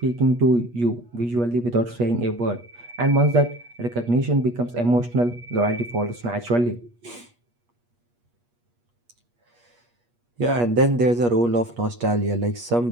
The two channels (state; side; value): late; left; 8.4 ms